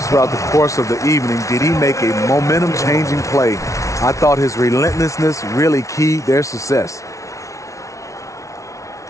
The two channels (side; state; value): right; late; 0.15 ms